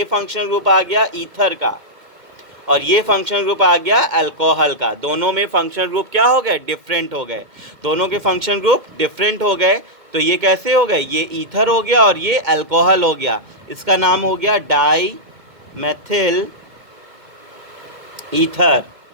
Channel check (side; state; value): left; late; 2.1 ms